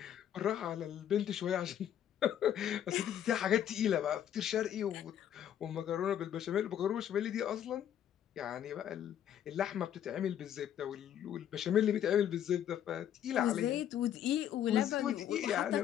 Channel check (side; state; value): right; quieter; 10.2 dB